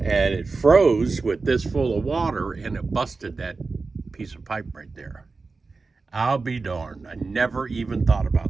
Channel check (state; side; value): quieter; left; 4.1 dB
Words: And it froze with this full of water and it busted that piece of pipe right there. I'll be darned. I never even thought